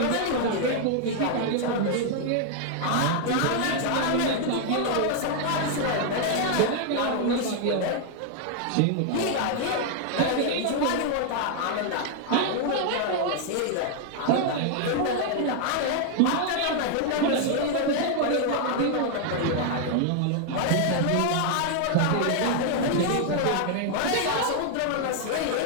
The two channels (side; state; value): both; different; correlation 0.00